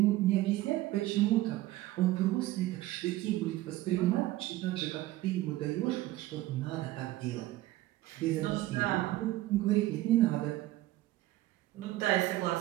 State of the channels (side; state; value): left; quieter; 16.4 dB